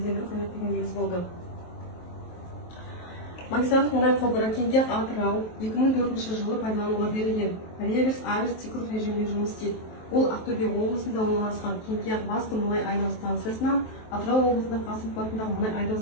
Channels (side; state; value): right; late; 23 ms